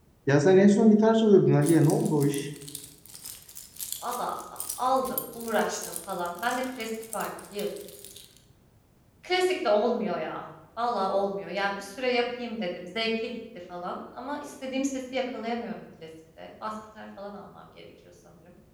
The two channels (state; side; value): identical; both; correlation 1.00